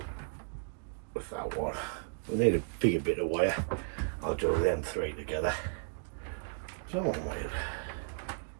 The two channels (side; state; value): left; silent; digital silence